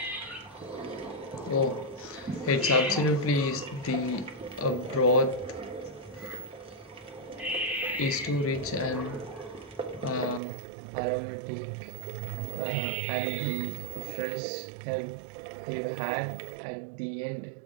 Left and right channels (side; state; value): left; drops out; at 10.4 s